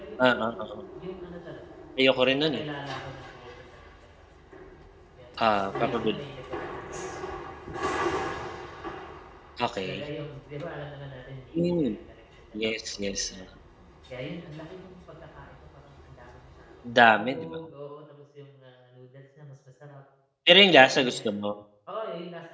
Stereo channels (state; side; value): identical; both; correlation 1.00